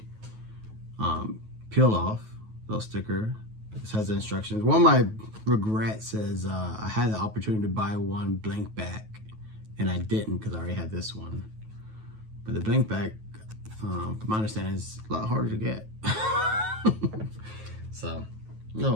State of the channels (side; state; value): left; late; 9.3 ms